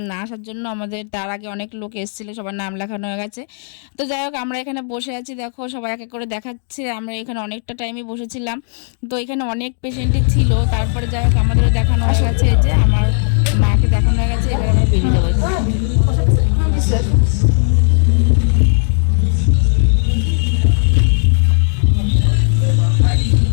না আসার জন্য। আমাদের তার আগে অনেক লোক এসেছিলো, সবার নাম লেখানো হয়ে গেছে। তো যাই হোক, আমরা এখানে বসে আছি, দেখো সবাই এক এক করে দেখাচ্ছে। আমরা এখানে অনেকটা টাইমই বসেছিলাম, তো এখানে অনেক পেশেন্টই ছিল। তারপরে যাই হোক, আমাদেরও দেখানো হয়ে গেছে, এই যে আমার মাকে দেখানো হয়ে গেছে। এবার আমরা বেরিয়ে যাবো।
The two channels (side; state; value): right; silent; digital silence